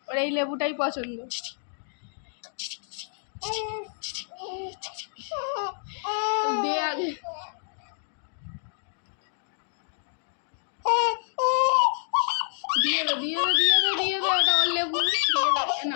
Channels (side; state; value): right; silent; digital silence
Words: ওর এই লেবুটাই পছন্দ। দে আগে। দিয়ে দে দিয়ে দে দিয়ে দে দিয়ে দে, ওটা ওর লেবু। না